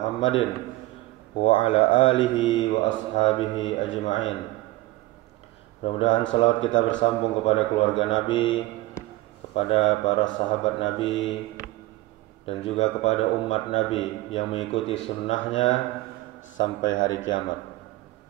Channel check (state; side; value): quieter; left; 18.7 dB